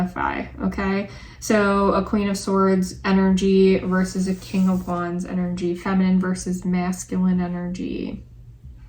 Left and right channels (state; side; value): identical; both; correlation 1.00